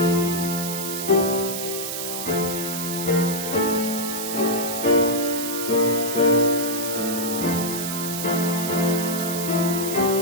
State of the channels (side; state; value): right; noise; hiss, 5 dB below the sound